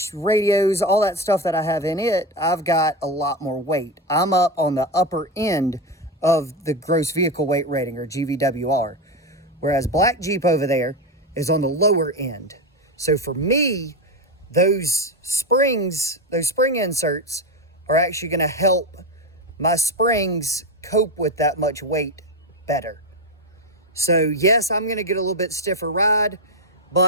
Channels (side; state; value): both; normal; correlation 0.14